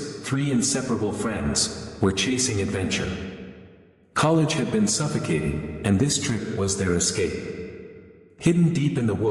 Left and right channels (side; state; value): both; identical; correlation 1.00